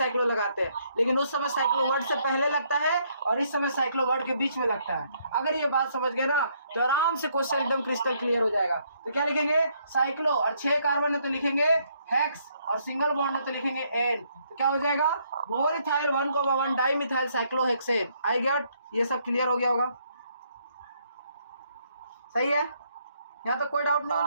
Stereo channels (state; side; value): inverted; both; correlation -0.70